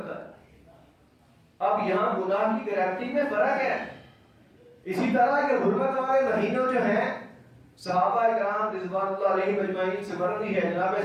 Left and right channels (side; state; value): both; identical; correlation 1.00